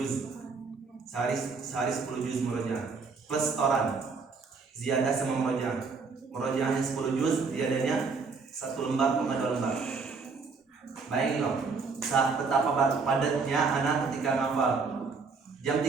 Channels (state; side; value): quieter; left; 4.7 dB